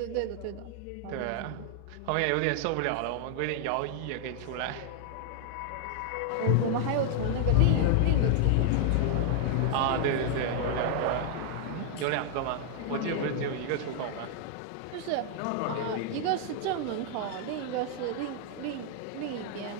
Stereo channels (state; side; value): different; both; correlation 0.00